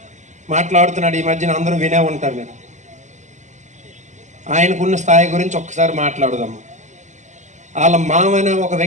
మాట్లాడుతున్నాడు. ఈ మధ్యన అందరూ వినే ఉంటారు మీరు. ఆయనకున్న స్థాయి గురించి ఒక్కసారి మాట్లాడుదాము. వాళ్ళ మామనే ఒక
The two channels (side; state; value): left; late; 0.34 ms